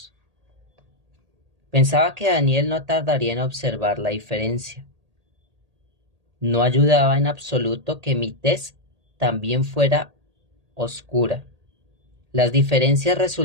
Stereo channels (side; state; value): left; late; 1.8 ms